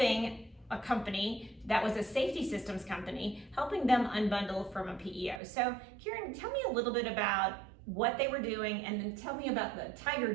a company that was a safety systems company, helping them unbundle from a PEO. So Karen, tell me a little bit about what they were doing, and then tell me about the Tiger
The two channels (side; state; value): left; drops out; at 5.4 s